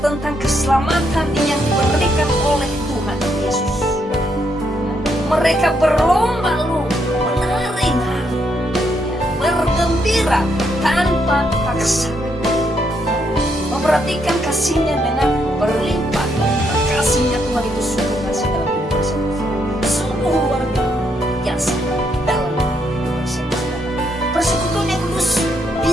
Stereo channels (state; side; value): normal; both; correlation 0.76